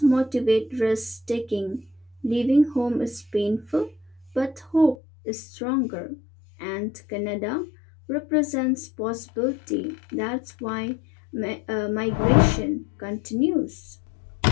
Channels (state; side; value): drops out; right; at 5.0 s